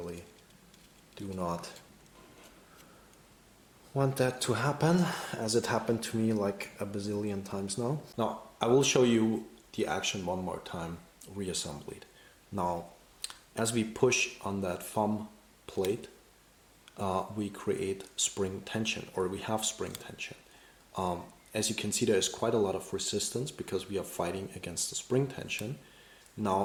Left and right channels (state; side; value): identical; both; correlation 1.00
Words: do not want that to happen, as it happened to me like a bazillion times now. Now, I will show you the action one more time, reassembled. Now, as we push on that thumb plate, we create spring tension, or we have spring tension. As you can see, there is quite a lot of resistance because we are fighting against the spring tension.